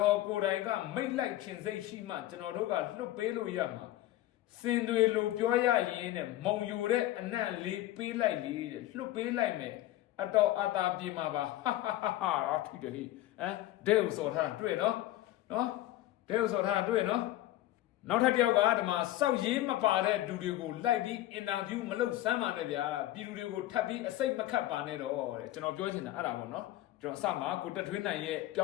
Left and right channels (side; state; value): right; quieter; 15.0 dB